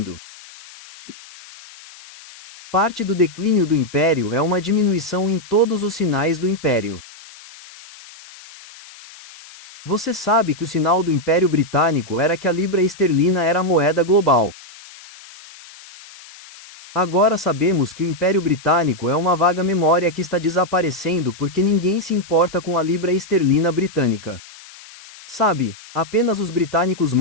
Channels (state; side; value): noise; left; hiss, 20 dB below the sound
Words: Parte do declínio do império é uma diminuição em todos os sinais do império. Você sabe que o sinal do Império Britânico era que a libra esterlina era a moeda global. Agora sabemos que o Império Britânico é uma vaga memória que está desaparecendo porque ninguém se importa com a libra esterlina britânica. Sabe, apenas os britânicos